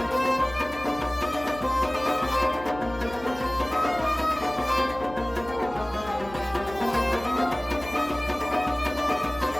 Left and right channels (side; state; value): left; noise; hum, 16 dB below the sound